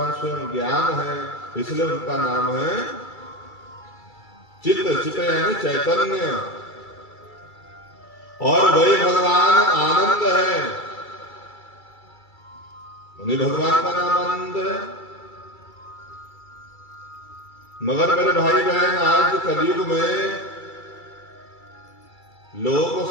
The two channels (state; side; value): late; right; 2.3 ms